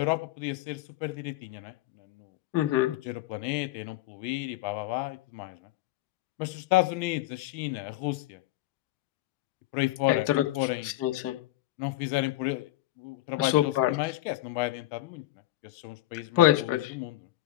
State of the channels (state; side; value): quieter; right; 16.0 dB